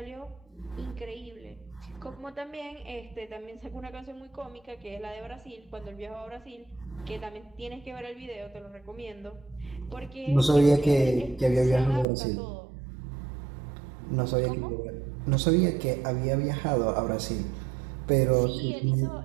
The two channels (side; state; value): left; drops out; at 12.1 s